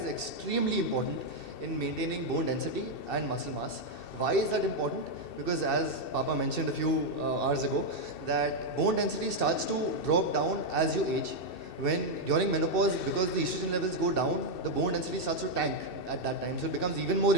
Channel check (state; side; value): late; right; 2.7 ms